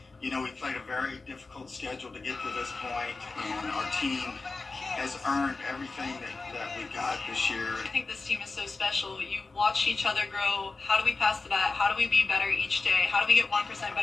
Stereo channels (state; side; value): quieter; right; 3.8 dB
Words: You know, we played a very difficult schedule to get to this point, and our team has earned everything that we got this year. I think this team is so special. You watch each other grow. How do we pass the bat? How do we be better each day? How do we get 1%